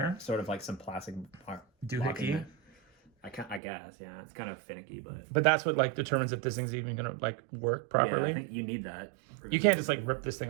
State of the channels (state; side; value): drops out; left; at 3.6 s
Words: Sort of like some plastic doohickey. I guess, yeah. It's kind of finicky, but that's what like determines if this thing's even gonna like work properly. Yeah, I think you need that. You can't just like rip this